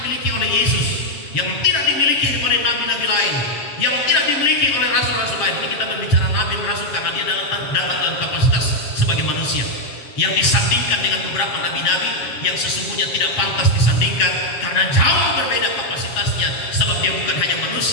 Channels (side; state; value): right; late; 7.3 ms